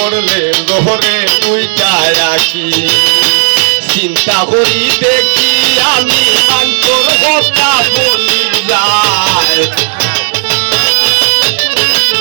ঘরে দুইটা রাখি চিন্তা করি দেখি আমি মানতর কথা বলি যায়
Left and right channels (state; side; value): silent; left; digital silence